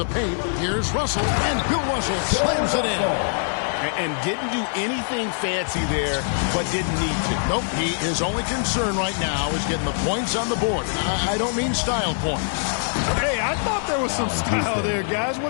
paint. Here's Russell. And Bill Russell slams it in. And didn't do anything fancy there, but didn't need to. Nope. His only concern right now is getting the points on the board. I don't mean style points. Hey, I thought there was some style there, guys.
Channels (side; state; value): right; silent; 62 dB below the other